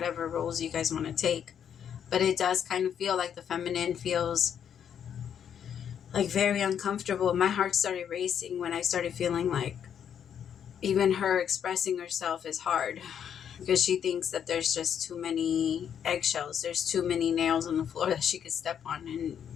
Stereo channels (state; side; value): quieter; right; 8.6 dB